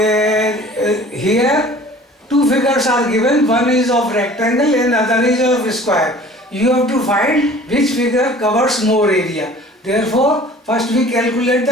two figures are given, one is of rectangle and other is of square. You have to find which figure covers more area. Therefore, first we calculate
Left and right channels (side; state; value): both; normal; correlation 0.47